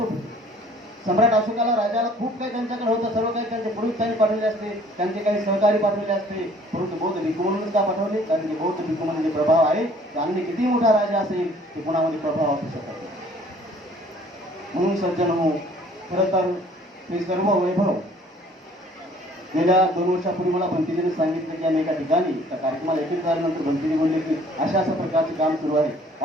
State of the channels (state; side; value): normal; both; correlation 0.55